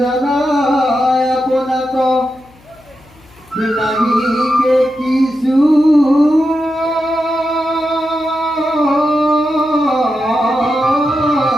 আপোনাক নাহিকে কিছু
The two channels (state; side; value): noise; left; hum, 28 dB below the sound